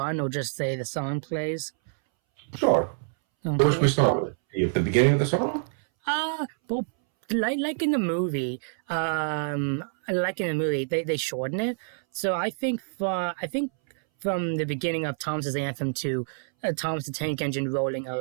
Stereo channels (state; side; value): silent; left; 60 dB below the other